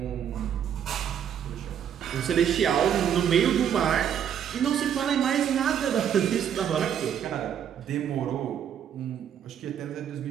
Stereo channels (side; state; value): left; quieter; 9.0 dB